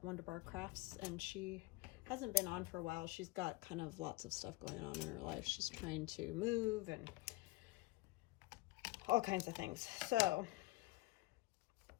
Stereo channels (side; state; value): right; quieter; 20.8 dB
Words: Wonderbar Crafts, and she hasn't been on for a while. She's got kind of lots of stuff going on in her life. She's trying to move and all kinds of things. So,